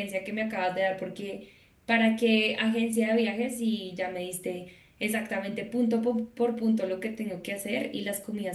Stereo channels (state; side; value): identical; both; correlation 1.00